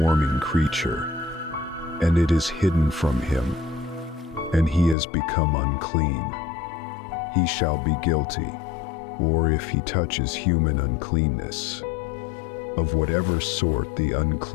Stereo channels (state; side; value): drops out; right; at 5.0 s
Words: creature, and it is hidden from him, and he has become unclean, he shall be guilty. Or if he touches human uncleanness, of whatever sort the